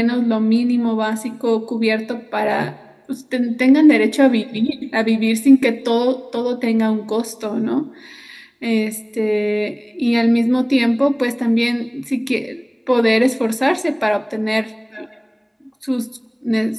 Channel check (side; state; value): both; identical; correlation 1.00